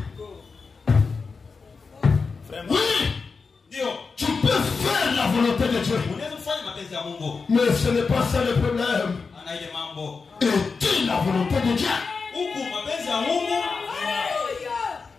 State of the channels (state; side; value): quieter; right; 4.8 dB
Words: Oui, tu peux faire la volonté de Dieu, mais ce n'est pas ça le problème. Est-il la volonté de Dieu?